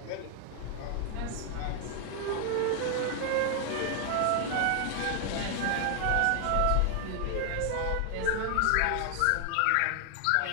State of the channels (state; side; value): different; both; correlation 0.00